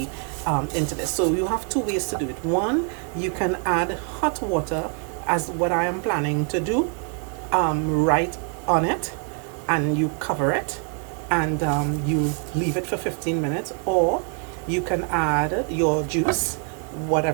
into this. So you have 2 ways to do it. One, you can add hot water, as what I am planning to do, right on it, and you cover it, and you leave it for 15 minutes. Or you can add your juice,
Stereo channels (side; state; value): left; quieter; 38.3 dB